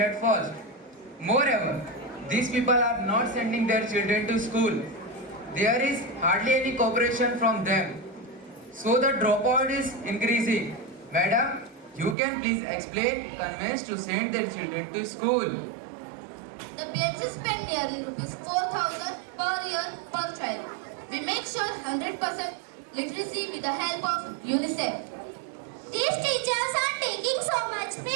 first. Moreover, these people are not sending their children to school. There is hardly any cooperation from them. So the dropout is increasing. Madam, You can please explain convince to send their children to school. The PHC spend nearly rupees 4,000 per year per child. We make sure 100% literacy with the help of UNICEF. These teachers are taking so much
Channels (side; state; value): left; drops out; at 12.2 s